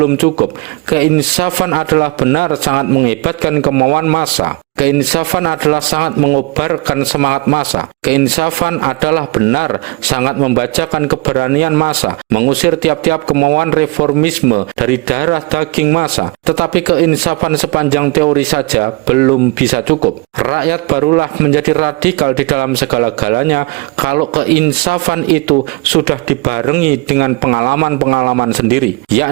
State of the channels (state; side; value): quieter; left; 25.4 dB